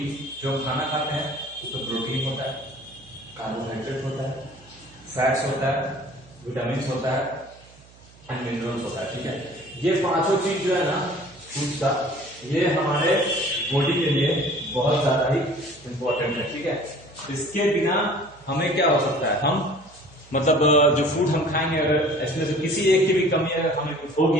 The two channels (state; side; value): noise; right; hum, 25 dB below the sound